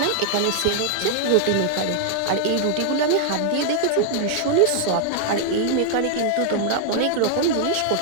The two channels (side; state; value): both; different; correlation 0.00